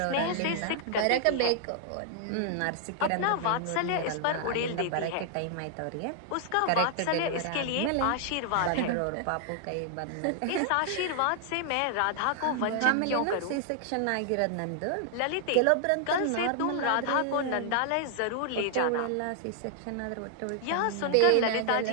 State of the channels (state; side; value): different; both; correlation 0.00